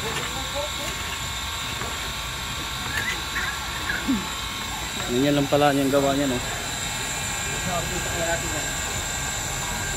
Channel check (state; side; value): identical; both; correlation 1.00